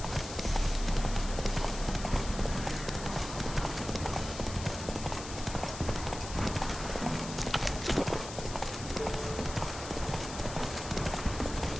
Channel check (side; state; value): left; noise; hiss, 10 dB below the sound